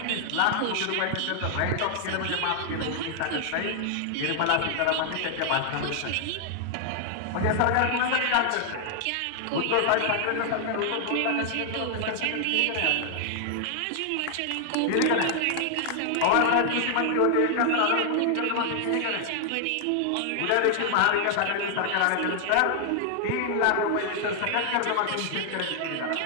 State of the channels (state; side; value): different; both; correlation 0.00